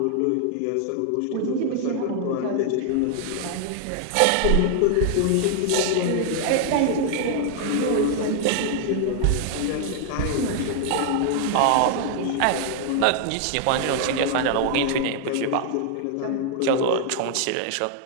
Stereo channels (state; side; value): different; both; correlation 0.00